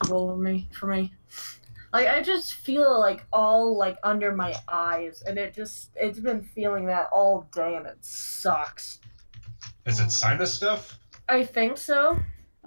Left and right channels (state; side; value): inverted; both; correlation -1.00